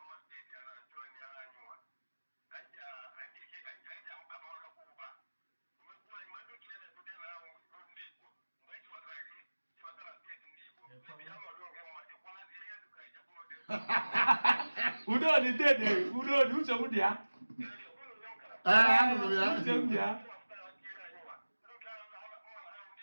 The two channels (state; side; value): inverted; both; correlation -1.00